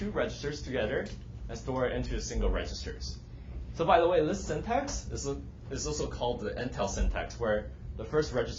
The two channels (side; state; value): both; identical; correlation 1.00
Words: registers together and store it into a single registers. So by the way, this syntax is also called the Intel syntax, where the first